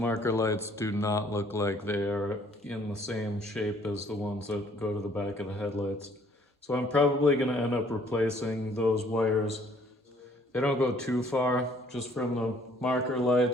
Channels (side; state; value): both; normal; correlation 0.61